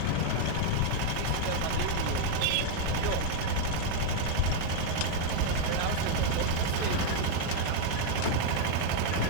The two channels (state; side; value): different; both; correlation 0.00